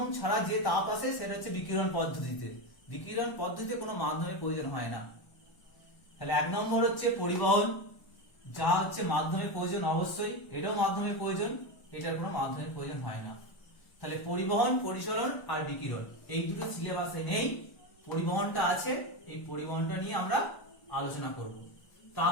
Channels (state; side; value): late; right; 1.0 ms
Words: ছাড়া যে তাপ আসে সেটা হচ্ছে বিকিরণ পদ্ধতিতে। বিকিরণ পদ্ধতিতে কোনো মাধ্যমের প্রয়োজন হয় না। তাহলে এক নম্বর হচ্ছে পরিবহন, যা হচ্ছে মাধ্যমের প্রয়োজন অবশ্যই, এটাও মাধ্যমের প্রয়োজন, এটার কোনো মাধ্যমের প্রয়োজন হয় না। তাহলে পরিবহন, পরিচলন আর বিকিরণ, এই দুটো সিলেবাসে নেই, পরিবহনটা আছে, এই পরিবহনটা নিয়ে আমরা আলোচনা করব।